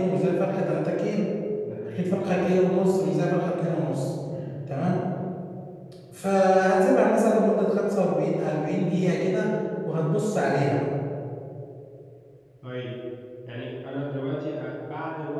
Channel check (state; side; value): identical; both; correlation 1.00